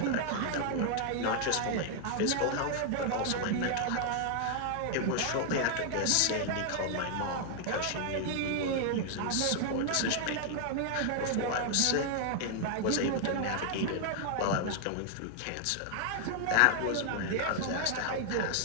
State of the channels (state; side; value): different; both; correlation 0.00